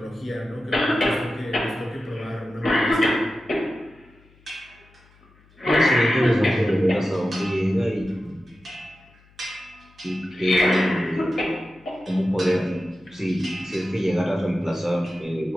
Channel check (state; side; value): noise; left; hum, 29 dB below the sound